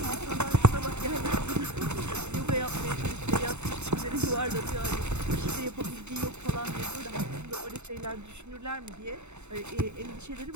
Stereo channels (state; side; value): late; left; 0.82 ms